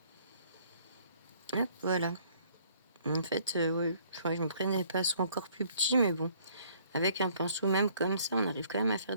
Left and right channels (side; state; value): both; inverted; correlation -0.61